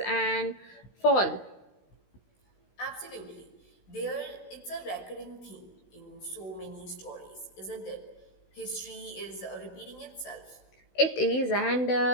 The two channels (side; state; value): right; late; 16 ms